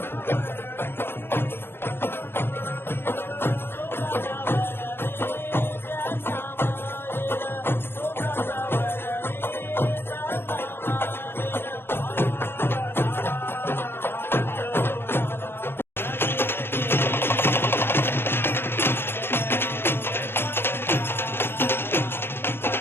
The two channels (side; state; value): right; late; 0.11 ms